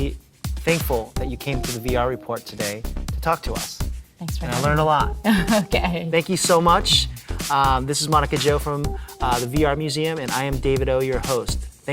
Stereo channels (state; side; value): identical; both; correlation 1.00